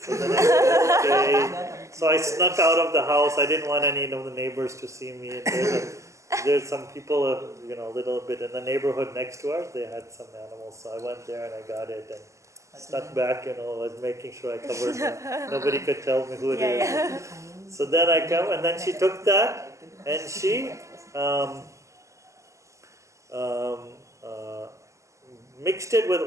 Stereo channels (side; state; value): left; late; 0.15 ms